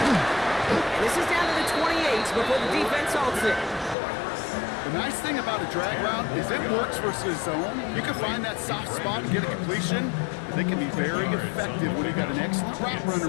And this is down to the 28 before the defense halts it. The nice thing about a drag route is it works versus zone. You can find that soft spot and get a completion. And they can be very effective when you've got an excellent route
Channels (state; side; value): drops out; right; at 4.0 s